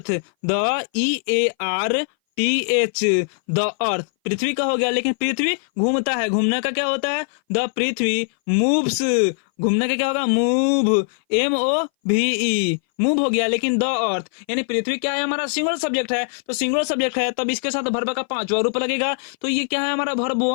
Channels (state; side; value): silent; right; 60 dB below the other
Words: the EARTH, the earth, पृथ्वी का हो गया, लेकिन पृथ्वी घूमता है, घूमने का क्या होता है, द पृथ्वी मूव्स, घूमने का क्या होगा, मूव, MOVE, मूव हो गया, लेकिन द अर्थ, यानी पृथ्वी क्या है हमारा, सिंगुलर सब्जेक्ट है, तो सिंगुलर सब्जेक्ट है, तब इसके साथ वर्ब का पांचवा रूप लगेगा, तो ये क्या है हमारा, वर्ब